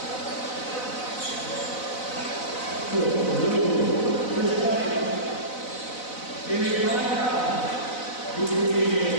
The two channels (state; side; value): late; right; 4.0 ms